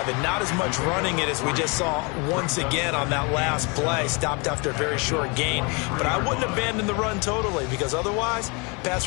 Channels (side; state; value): right; quieter; 30.9 dB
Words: and not as much running it as we just saw once again on that last play. Stopped after a very short gain. But I wouldn't abandon the run totally, because otherwise, pass